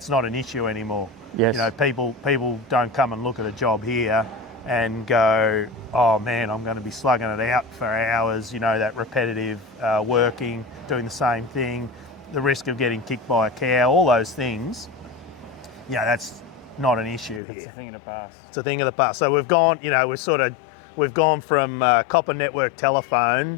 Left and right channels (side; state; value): right; drops out; at 17.4 s